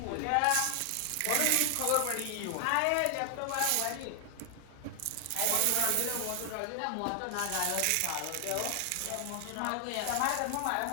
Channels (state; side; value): different; both; correlation 0.00